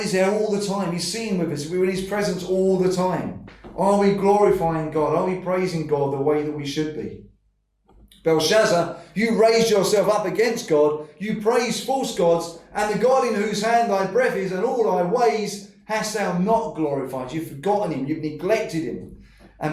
there all the time. He's seen with us. We're in his presence all the time. Are we glorifying God? Are we praising God the way that we should be? Belshazzar, you raised yourself up against God. You praise false gods, and the God in whose hand thy breath is and all thy ways hast thou not glorified. You've forgotten him. You've neglected him.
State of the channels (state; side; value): identical; both; correlation 1.00